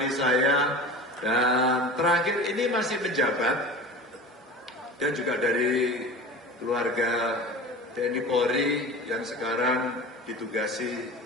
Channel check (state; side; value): normal; both; correlation 0.35